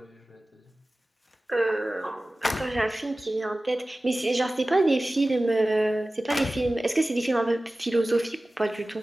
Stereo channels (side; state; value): both; normal; correlation 0.97